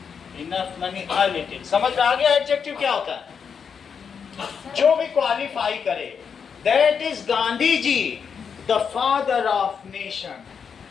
enough money, a little. समझ में आ गया एडजेक्टिव क्या होता है? जो भी क्वालिफाई करे। That is Gandhi ji, the father of nation,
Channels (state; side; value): quieter; right; 6.6 dB